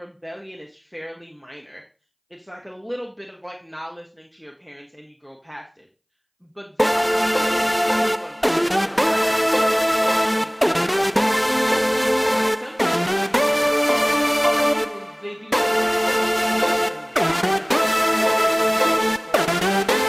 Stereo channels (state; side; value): identical; both; correlation 1.00